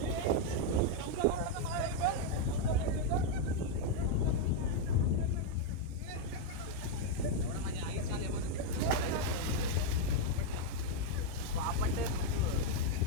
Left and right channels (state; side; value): late; left; 26 ms